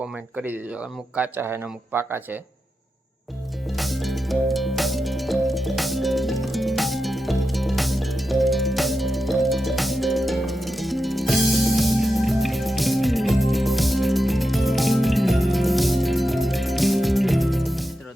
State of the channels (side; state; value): both; normal; correlation 0.89